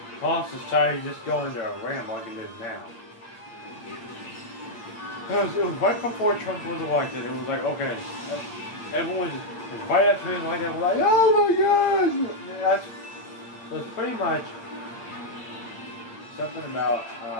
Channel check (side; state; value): right; late; 8.7 ms